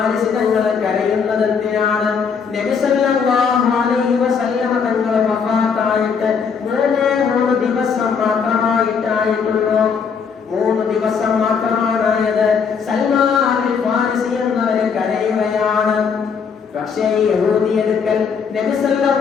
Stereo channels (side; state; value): right; quieter; 6.2 dB